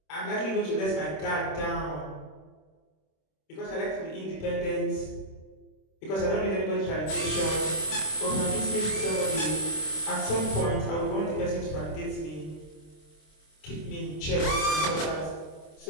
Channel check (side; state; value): right; late; 26 ms